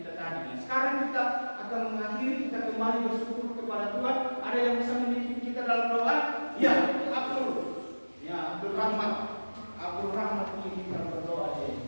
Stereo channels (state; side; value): inverted; both; correlation -1.00